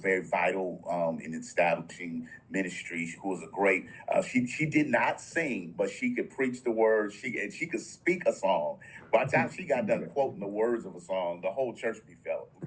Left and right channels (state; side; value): identical; both; correlation 1.00